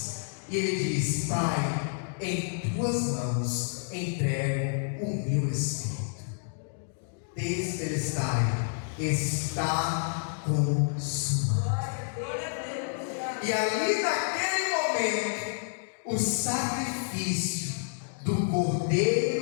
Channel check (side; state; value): right; silent; digital silence